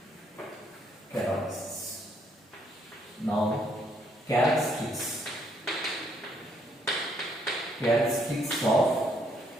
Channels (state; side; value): normal; both; correlation 0.70